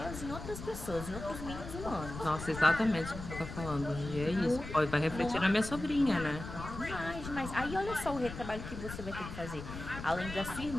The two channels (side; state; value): left; noise; rumble, 9 dB below the sound